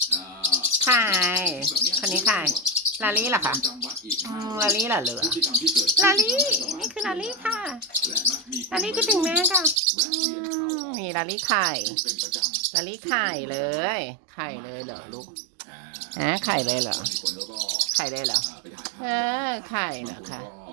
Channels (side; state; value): left; drops out; at 9.8 s